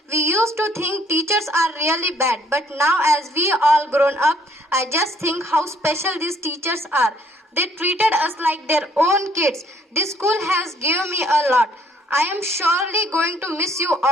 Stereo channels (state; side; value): normal; both; correlation 0.64